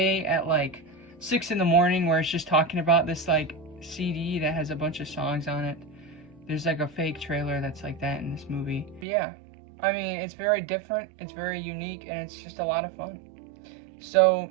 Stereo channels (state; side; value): drops out; left; at 9.1 s